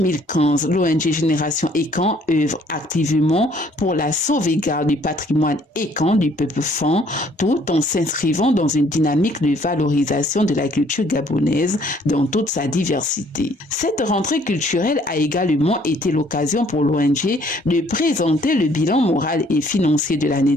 l'ONG Génération Ekan œuvre activement pour la sauvegarde du patrimoine Ekan du peuple Fan, tout en s'inscrivant dans une dynamique de valorisation de la culture gabonaise dans toute sa diversité. Cette rentrée culturelle a également été l'occasion pour l'ONG de présenter le bilan moral et financier de l'année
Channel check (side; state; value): both; normal; correlation 0.62